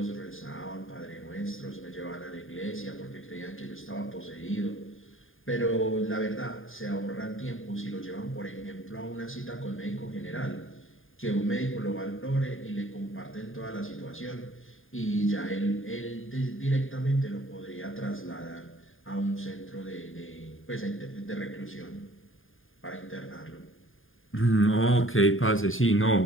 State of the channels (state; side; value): late; right; 0.59 ms